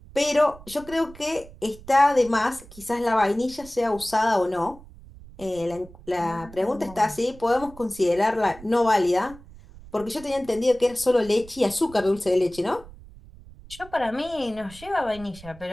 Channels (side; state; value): right; noise; rumble, 20 dB below the sound